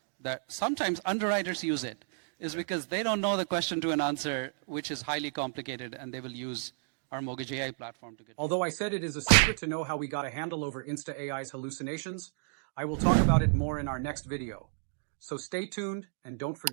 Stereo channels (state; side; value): silent; left; digital silence